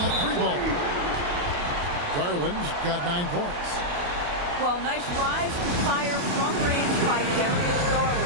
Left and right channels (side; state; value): left; late; 28 ms